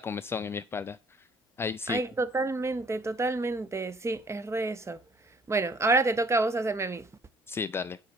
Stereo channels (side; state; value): both; normal; correlation 0.58